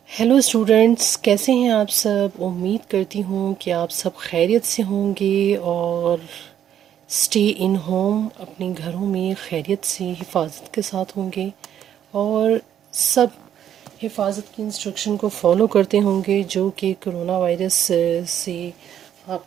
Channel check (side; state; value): left; quieter; 10.1 dB